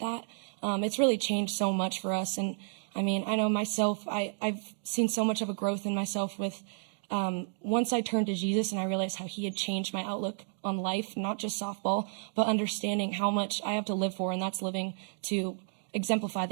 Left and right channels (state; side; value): silent; left; digital silence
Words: it's really changed so much for us. And I mean, I know myself, I've seen so much of a growth in myself with once I turned to Jesus and I realized how he had changed my outlook on life, not just softball, but understanding how much I have to live for, and that's living to exemplify